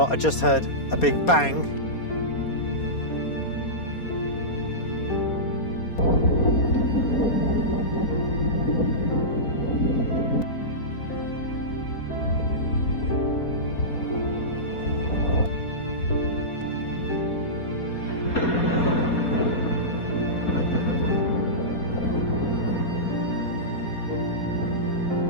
what, I just heard a big bang.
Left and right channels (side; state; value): right; late; 4.2 ms